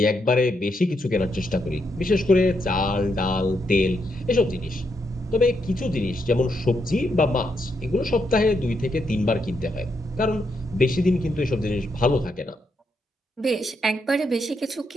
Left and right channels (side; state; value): both; normal; correlation 0.80